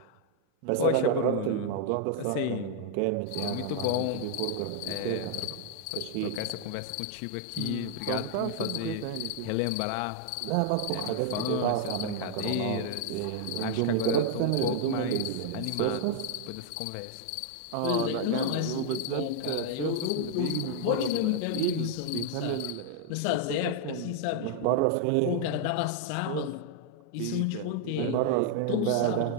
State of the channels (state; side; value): different; both; correlation 0.00